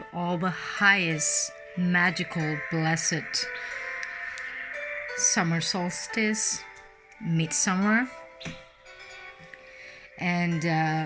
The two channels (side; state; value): both; identical; correlation 1.00